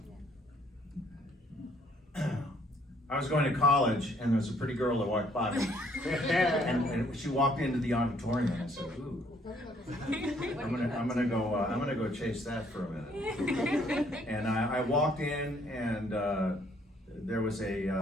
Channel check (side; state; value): both; normal; correlation 0.65